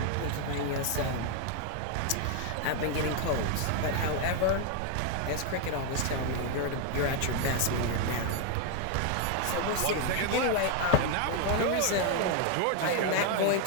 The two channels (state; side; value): different; both; correlation 0.01